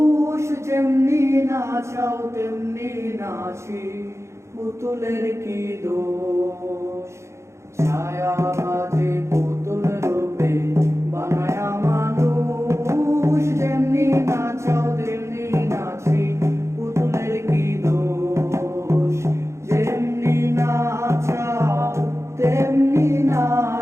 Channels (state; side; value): late; left; 0.13 ms